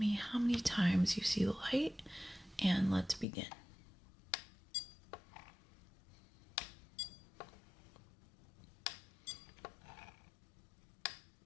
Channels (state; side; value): drops out; right; at 3.2 s